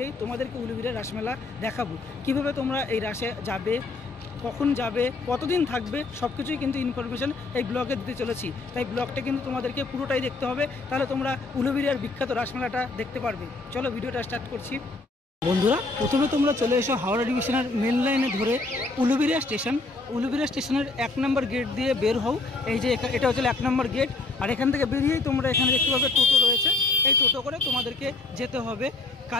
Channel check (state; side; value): quieter; right; 3.5 dB